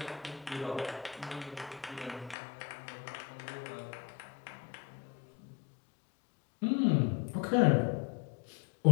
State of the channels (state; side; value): drops out; right; at 2.4 s